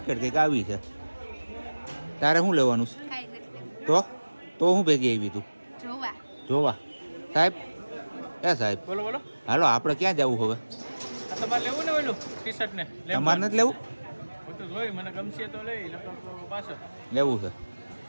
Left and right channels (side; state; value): both; inverted; correlation -1.00